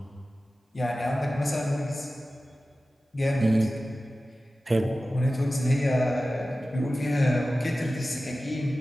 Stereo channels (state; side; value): normal; both; correlation 0.95